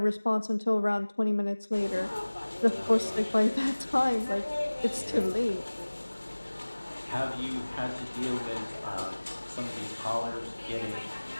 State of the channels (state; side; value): inverted; both; correlation -1.00